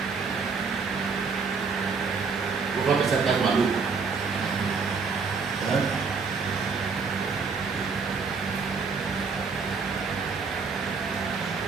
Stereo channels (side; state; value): left; quieter; 5.1 dB